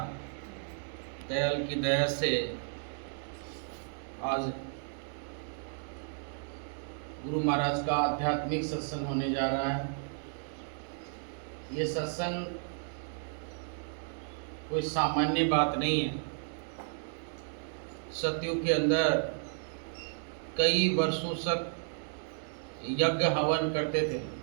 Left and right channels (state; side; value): silent; left; digital silence